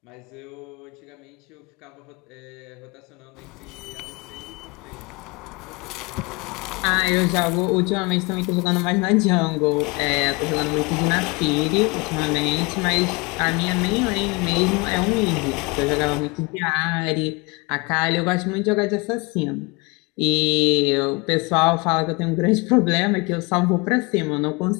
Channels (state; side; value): quieter; right; 27.1 dB